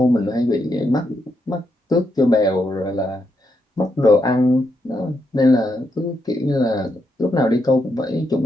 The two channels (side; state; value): both; normal; correlation 0.81